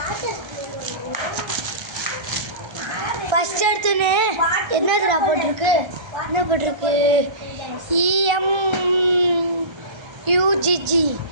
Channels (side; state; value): left; late; 1.3 ms